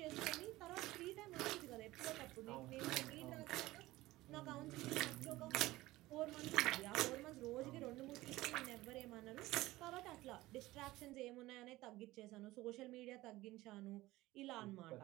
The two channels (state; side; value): quieter; left; 18.1 dB